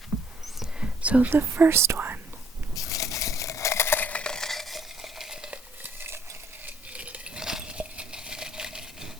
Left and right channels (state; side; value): normal; both; correlation 0.64